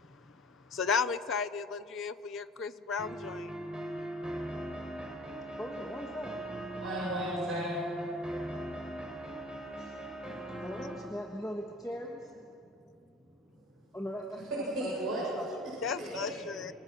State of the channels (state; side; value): normal; both; correlation 0.46